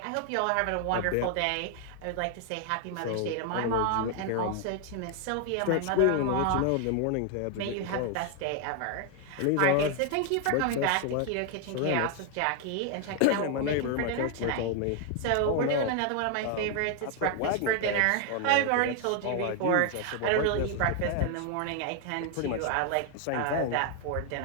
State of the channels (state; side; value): different; both; correlation 0.00